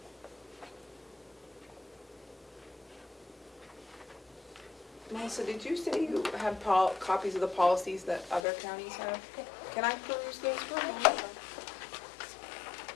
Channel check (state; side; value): drops out; right; at 8.5 s